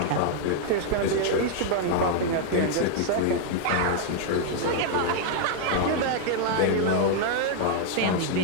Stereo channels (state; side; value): different; both; correlation 0.00